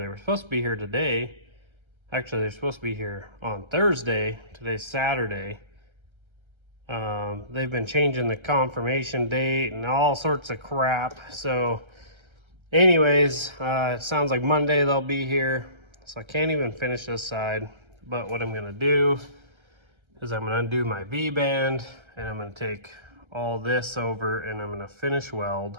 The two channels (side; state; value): left; late; 1.3 ms